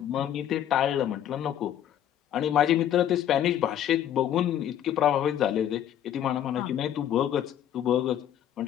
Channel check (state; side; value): quieter; right; 10.7 dB